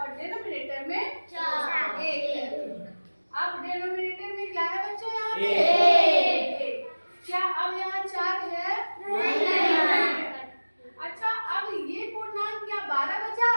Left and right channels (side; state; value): both; inverted; correlation -1.00